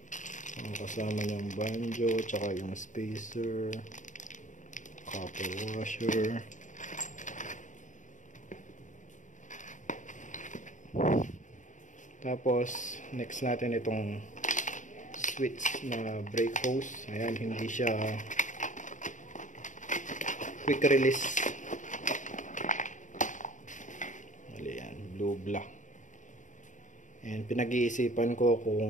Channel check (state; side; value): late; right; 0.36 ms